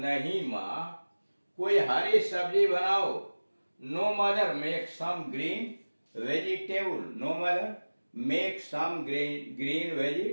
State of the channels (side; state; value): both; inverted; correlation -1.00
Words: माँ कोई हरी सब्जी बनाओ। No mother make some green vegetable, no mother make some green